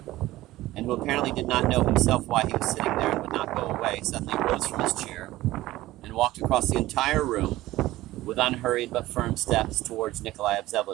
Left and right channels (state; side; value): quieter; left; 16.7 dB